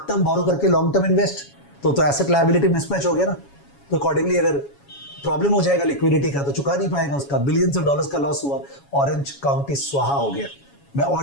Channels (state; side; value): late; right; 7.2 ms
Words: टर्म बोरो करके लॉन्ग टर्म इन्वेस्ट, तो एसेट लायबिलिटी मिसमैच हो गया ना। तो अकॉर्डिंगली अगर प्रॉब्लम हो जाएगा लिक्विडिटी का तो चुका नहीं पाएगा, उसका बिलियंस ऑफ डॉलर्स का लॉस हुआ, ऑरेंज काउंटी स्वाहा हो गया। मैं